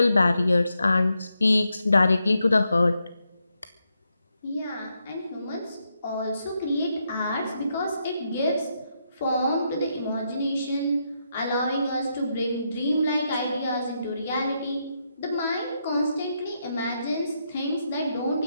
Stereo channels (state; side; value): inverted; both; correlation -0.81